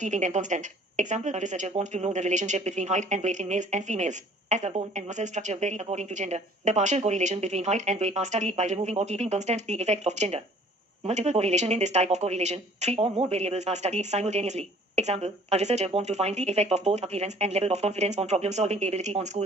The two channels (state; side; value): normal; both; correlation 0.53